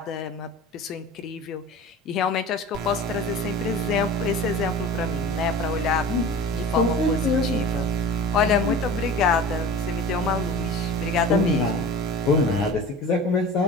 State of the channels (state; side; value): normal; both; correlation 0.37